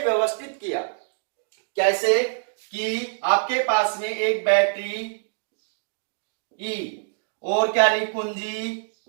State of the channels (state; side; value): silent; left; digital silence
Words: किया, कैसे कि आपके पास में एक बैटरी ई और क्या ली, कुंजी